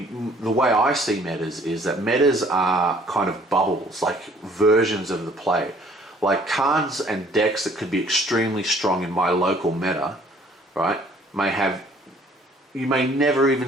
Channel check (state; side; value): normal; both; correlation 0.58